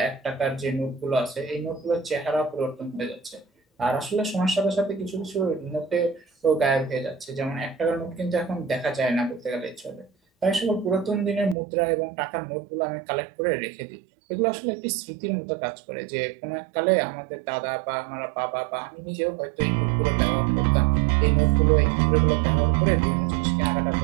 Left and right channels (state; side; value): drops out; left; at 11.6 s